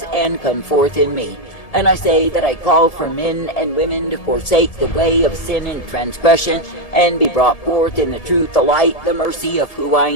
and come forth in me. And I say that I call for men and women to forsake the way of sin and transgression and be brought forth in the truth, the light, the mercy of who I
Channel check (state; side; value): late; right; 1.7 ms